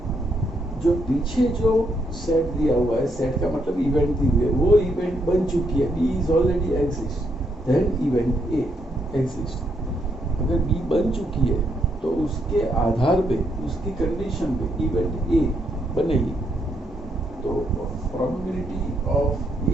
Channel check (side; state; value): both; normal; correlation 0.76